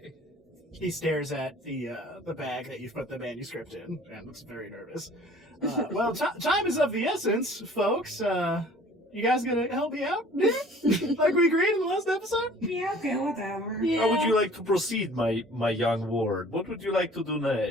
He stares at the bag that you've put the manuscript in and looks very nervous. Well, time is of the essence, folks. You guys gonna help me out? Like we agreed in the last episode? Yeah, okay, whatever. Yeah. How would you like to proceed, my young ward? What would you like to do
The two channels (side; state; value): both; normal; correlation 0.50